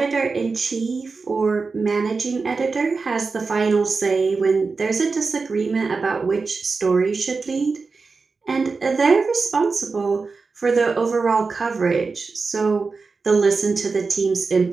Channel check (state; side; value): quieter; left; 4.4 dB